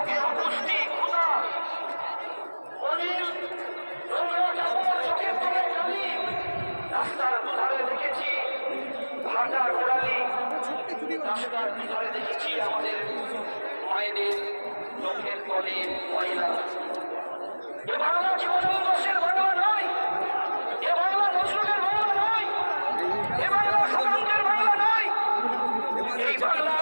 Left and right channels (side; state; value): both; inverted; correlation -1.00